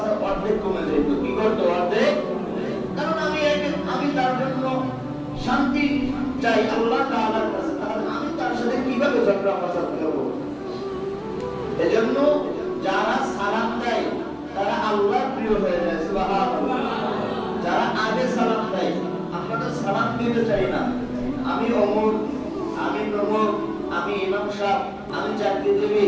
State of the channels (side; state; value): both; identical; correlation 1.00